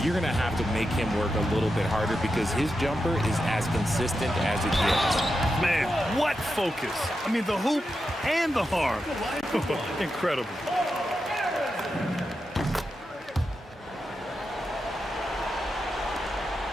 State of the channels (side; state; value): both; normal; correlation 0.88